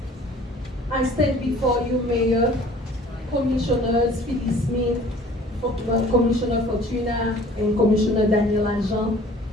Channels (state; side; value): normal; both; correlation 0.50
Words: I stand before you, Mayor, Commissioners, Phyllis Smith, Commissioner Fortuna and Commissioner Daniel Agent.